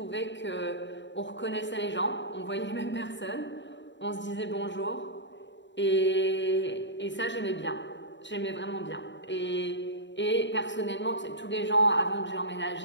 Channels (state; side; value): late; right; 0.53 ms